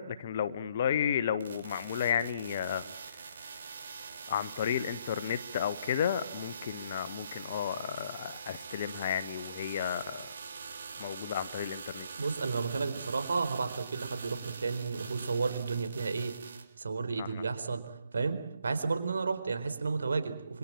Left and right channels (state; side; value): inverted; both; correlation -0.71